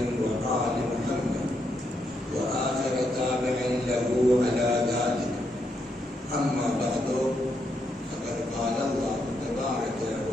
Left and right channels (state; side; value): normal; both; correlation 0.79